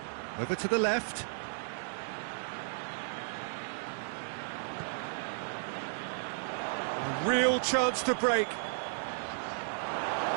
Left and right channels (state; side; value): silent; left; digital silence